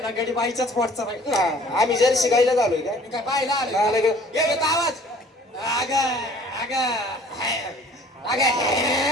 ना गडी बाईच्याच पोटचा बाई हा, आम्ही जर शिकायला झालोय काय मी काय बाईला आले नाही, नाही. हे देतो आवाज अग अग अग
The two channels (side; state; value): both; normal; correlation 0.52